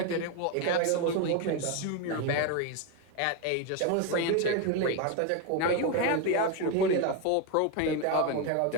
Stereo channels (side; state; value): both; different; correlation 0.02